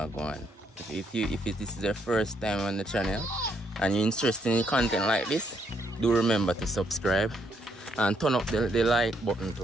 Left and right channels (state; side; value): normal; both; correlation 0.73